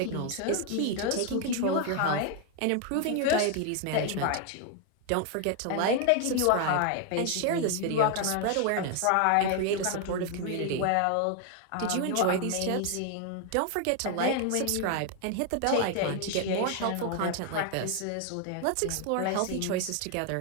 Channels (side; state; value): both; different; correlation 0.00